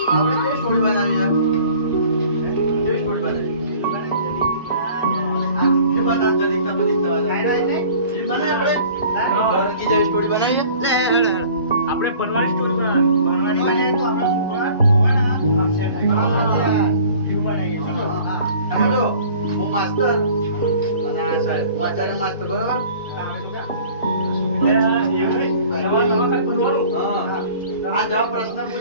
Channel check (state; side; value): inverted; both; correlation -0.49